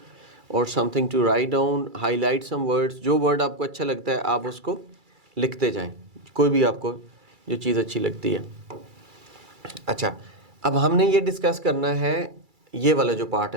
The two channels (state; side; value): late; left; 2.3 ms